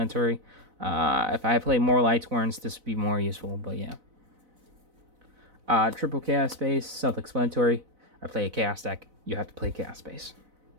If I play more Lightsworns, this would be more useful, but yeah. Triple Chaos Space, self-explanatory. I play a Chaos deck. You have to play Chaos Space.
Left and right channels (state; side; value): late; left; 4.0 ms